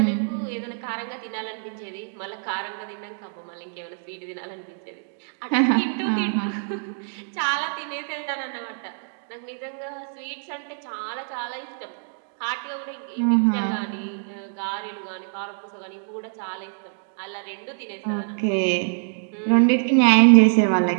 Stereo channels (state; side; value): silent; left; digital silence